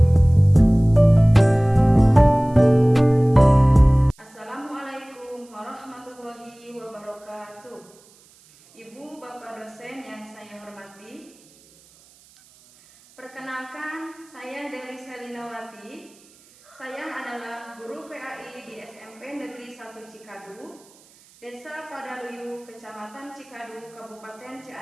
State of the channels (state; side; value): noise; right; hiss, 28 dB below the sound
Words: warahmatullahi wabarakatuh. Ibu, Bapak dosen yang saya hormati, perkenalkan, saya Deli Selinawati. Saya adalah guru PAI di SMP Negeri 1 Cikadu, Desa Padaluyu, Kecamatan Cikadu, Kabupaten